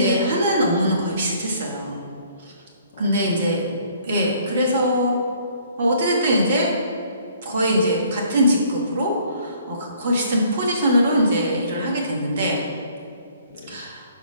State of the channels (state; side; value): inverted; both; correlation -0.59